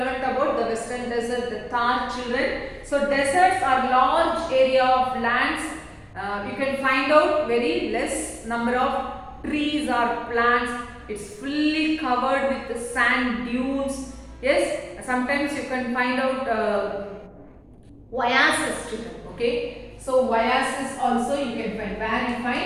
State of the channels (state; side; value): identical; both; correlation 1.00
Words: about the western desert, the Thar, children. So deserts are large area of lands. You can find out very less number of trees or plants. It's fully covered with the sand dunes. Yes, sometimes you can find out oasis, children. Okay, so oasis also you can find. Where you